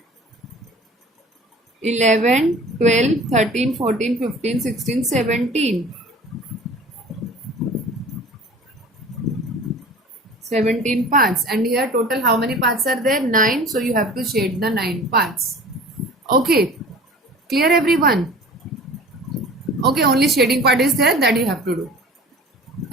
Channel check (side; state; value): both; normal; correlation 0.42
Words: 11, 12, 13, 14, 15, 16, 17. 17 parts. And here total how many parts are there? 9. So you have to shade the 9 parts. Okay. Clear everyone? Okay, only shading part is there that you have to do.